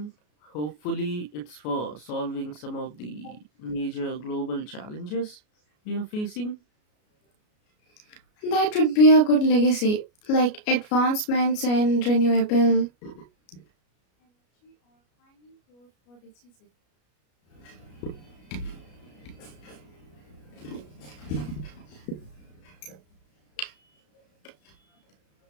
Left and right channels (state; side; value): late; right; 33 ms